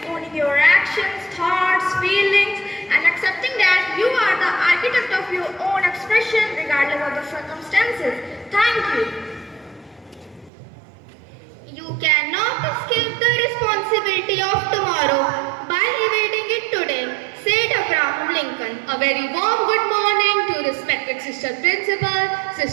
owning your actions, thoughts, feelings, and accepting that you are the architect of your own expression regardless of the circumstances. Thank you. You cannot escape the responsibility of tomorrow by evading it today, said Abraham Lincoln. A very warm good morning to respected Sister Principal,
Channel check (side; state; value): left; drops out; at 10.5 s